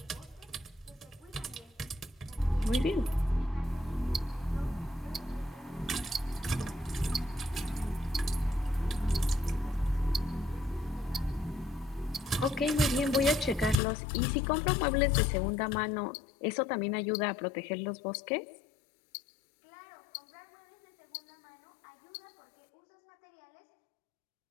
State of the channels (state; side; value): drops out; right; at 13.8 s